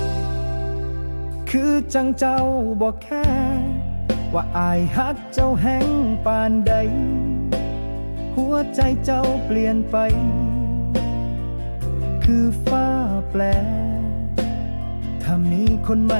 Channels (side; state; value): both; inverted; correlation -1.00